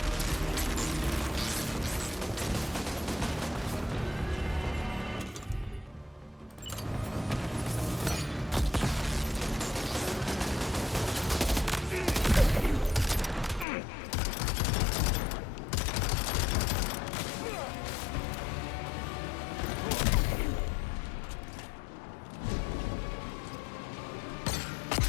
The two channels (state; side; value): drops out; right; at 13.7 s